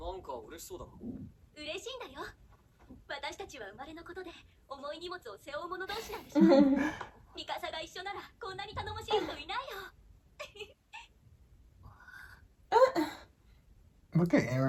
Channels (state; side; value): identical; both; correlation 1.00